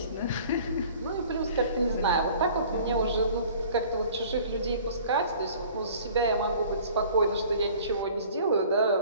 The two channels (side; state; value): both; inverted; correlation -0.49